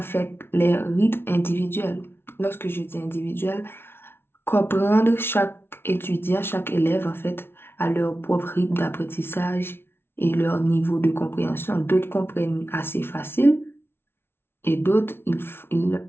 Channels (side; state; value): right; late; 0.11 ms